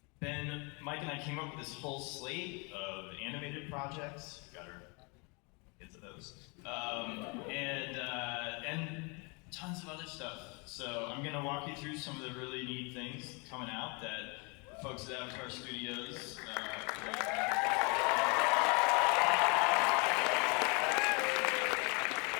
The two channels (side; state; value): right; quieter; 31.5 dB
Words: Mike and I came up with this whole slate of animated projects. Got our get to those. And tons of other stuff. So I'm gonna walk you through some of the really neat things coming out that folks at Avatar Studios